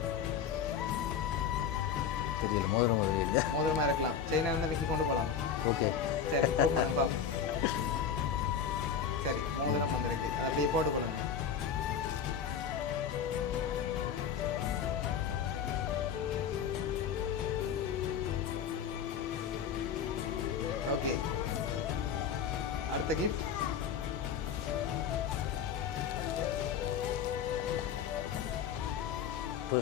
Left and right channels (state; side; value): quieter; right; 7.3 dB